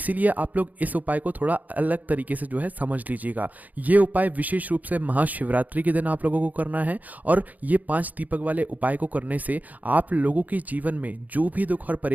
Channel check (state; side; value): late; left; 0.079 ms